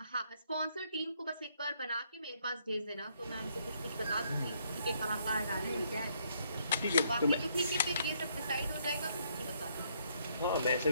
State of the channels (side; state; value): both; inverted; correlation -0.70